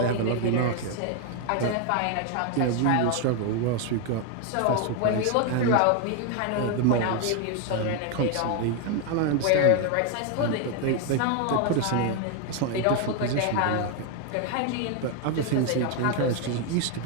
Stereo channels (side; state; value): both; different; correlation 0.01